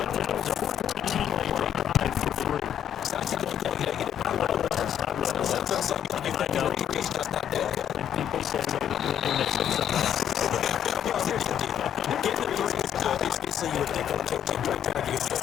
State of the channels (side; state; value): right; quieter; 9.6 dB